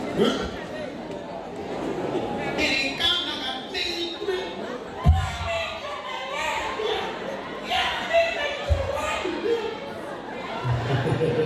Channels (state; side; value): identical; both; correlation 1.00